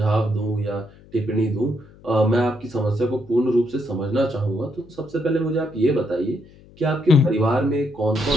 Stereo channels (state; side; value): noise; left; hum, 24 dB below the sound